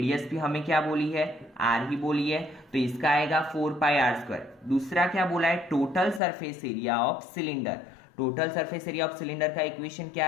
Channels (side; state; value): right; drops out; at 6.2 s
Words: भी हमें क्या बोली है r ही बोली है, तो इसका आएगा 4 पाई r स्क्वायर। दूसरा क्या बोला है total surface area of cylinder. Total surface area of cylinder का इक्वेशन